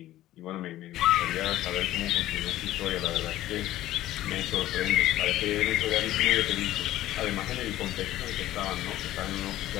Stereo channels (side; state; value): right; quieter; 14.6 dB